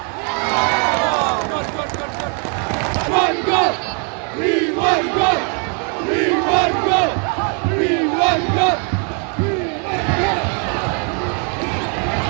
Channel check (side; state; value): left; quieter; 39.0 dB